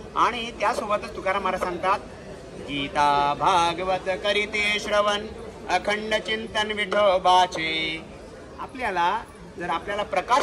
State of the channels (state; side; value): identical; both; correlation 1.00